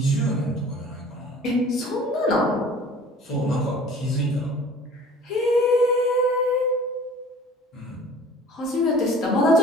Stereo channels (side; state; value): both; normal; correlation 0.47